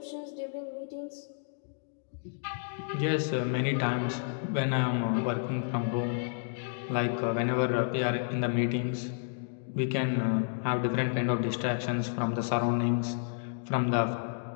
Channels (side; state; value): right; silent; digital silence